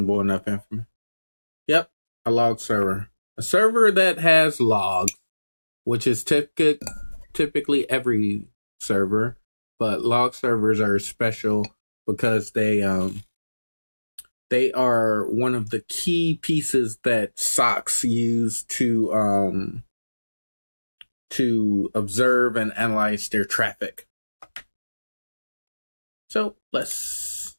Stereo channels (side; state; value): both; inverted; correlation -1.00